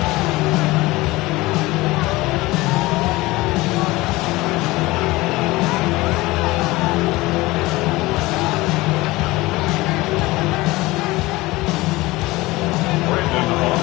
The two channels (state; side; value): quieter; right; 20.3 dB